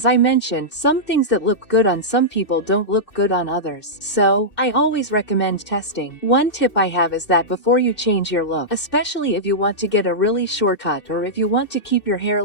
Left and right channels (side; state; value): right; late; 2.7 ms